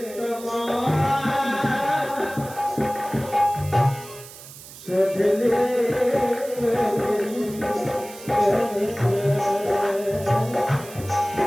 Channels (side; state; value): right; noise; hiss, 17 dB below the sound